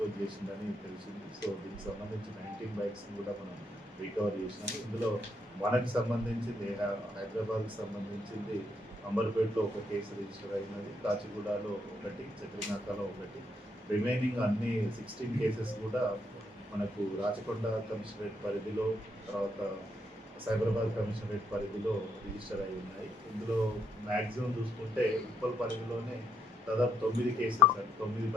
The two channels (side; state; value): both; normal; correlation 0.75